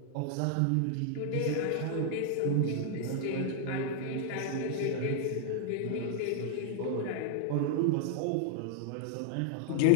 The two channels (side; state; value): both; different; correlation 0.00